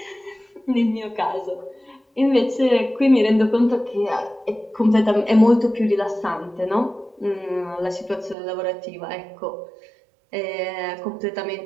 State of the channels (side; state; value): left; drops out; at 8.3 s